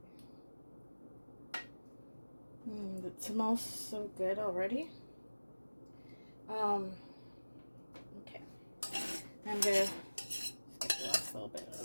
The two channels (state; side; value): inverted; both; correlation -1.00